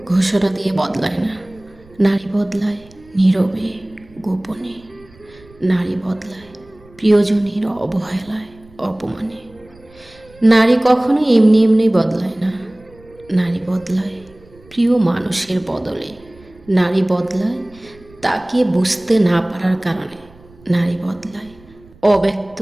ঘোষণা দিয়ে বদলায় না। নারী বদলায় নীরবে, গোপনে। নারী বদলায় প্রিয়জনের অবহেলায়, অপমানে। নারী কখনো এমনি এমনি বদলায় না। নারী বদলায় প্রিয় মানুষের বদলে। নারী বদলায় তাকে বুঝতে না পারার কারণে। নারী বদলায় অব্যক্ত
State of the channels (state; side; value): noise; right; rumble, 26 dB below the sound